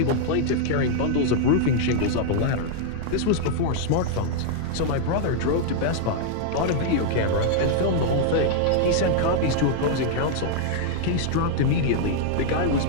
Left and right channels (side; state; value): both; different; correlation -0.01